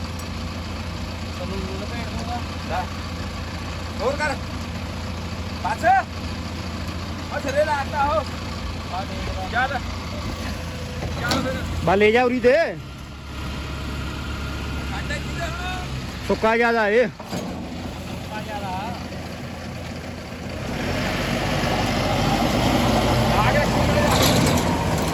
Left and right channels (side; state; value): both; identical; correlation 1.00